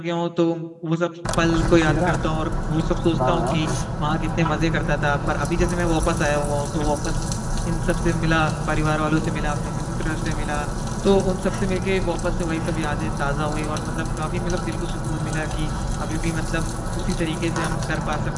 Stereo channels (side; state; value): both; identical; correlation 1.00